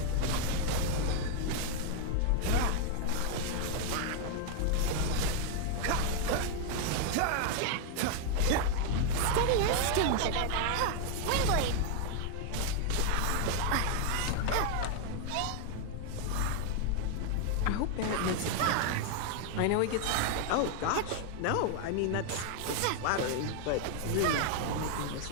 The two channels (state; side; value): different; both; correlation 0.00